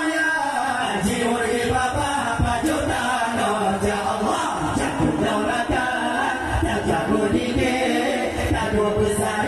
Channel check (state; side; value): identical; both; correlation 1.00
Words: jiwa di bapa pajuta no ja Allah, jago daulakan, jago dike, jago